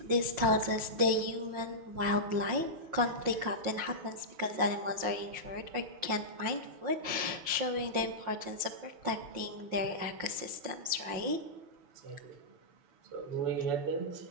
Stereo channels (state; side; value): late; left; 5.6 ms